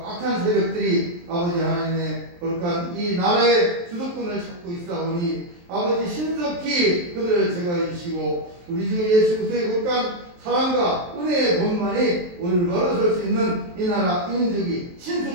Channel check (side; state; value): left; late; 23 ms